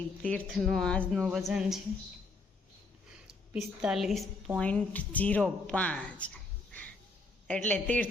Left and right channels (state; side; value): quieter; right; 3.5 dB